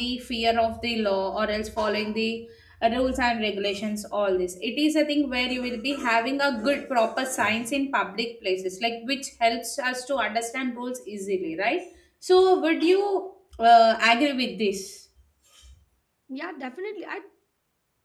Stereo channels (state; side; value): identical; both; correlation 1.00